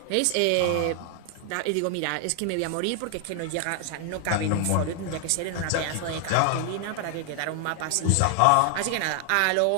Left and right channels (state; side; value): different; both; correlation 0.00